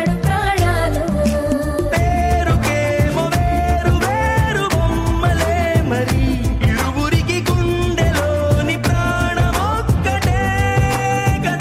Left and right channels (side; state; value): both; identical; correlation 1.00